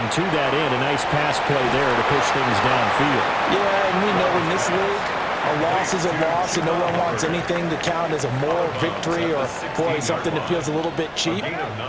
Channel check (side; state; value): both; identical; correlation 1.00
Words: to that end, a nice pass play there to push things downfield. Yeah, and we know in this league, a loss is a loss, and no one wants anything to count as a moral victory or, boy, something that feels a little bit cheap.